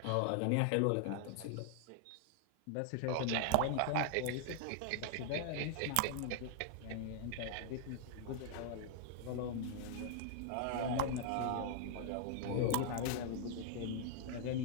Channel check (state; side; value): different; both; correlation 0.00